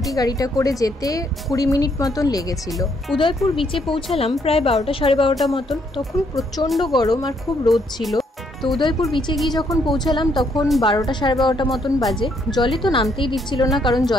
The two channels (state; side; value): normal; both; correlation 0.71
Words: গাড়িটা করে যেতে 20 মিনিট মতন লেগেছিল। উদয়পুর বিচে পৌঁছালাম প্রায় 12টা সাড়ে 12টা মতন। তখন প্রচণ্ড গরম আর খুব রোদ ছিল। তো উদয়পুর বিচে গিয়ে যখন পৌঁছালাম তখন 12টা সাড়ে 12টা মতন বাজে। জলে তো নামতেই দিচ্ছিল না, কারণ